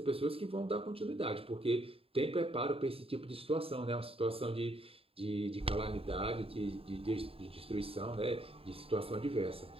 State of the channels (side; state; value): left; late; 0.27 ms